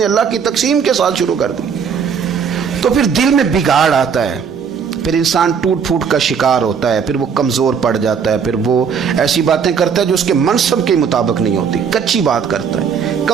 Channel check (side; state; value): left; quieter; 6.7 dB